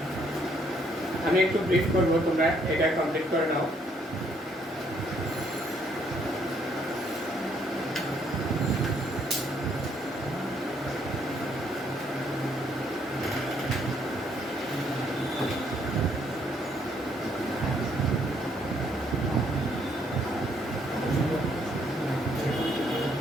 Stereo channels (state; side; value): normal; both; correlation 0.69